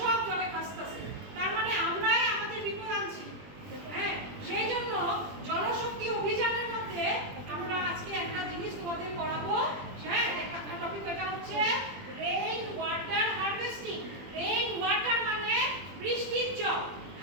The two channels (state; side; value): late; left; 20 ms